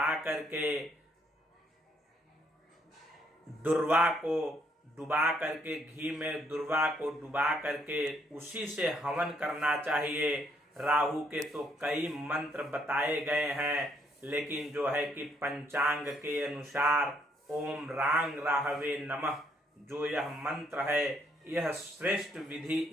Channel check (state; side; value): normal; both; correlation 0.70